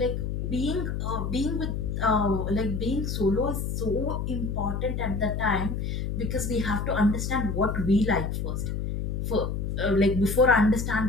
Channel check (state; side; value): noise; left; hum, 2 dB below the sound